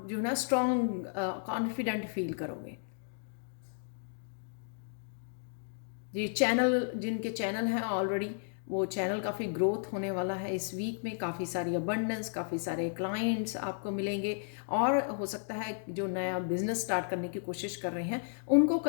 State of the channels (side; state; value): right; silent; digital silence